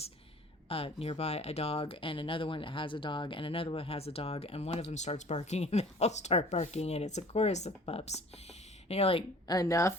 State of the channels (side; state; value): both; normal; correlation 0.48